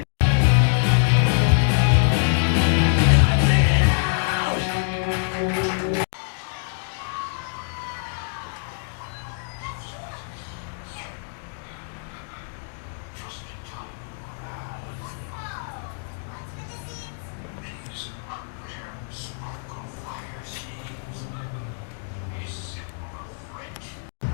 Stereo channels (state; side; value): silent; right; digital silence